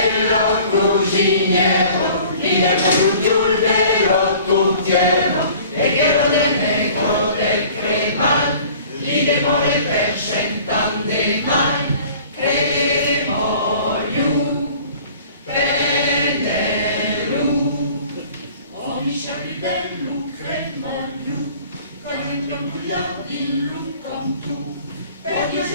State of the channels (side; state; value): both; inverted; correlation -0.49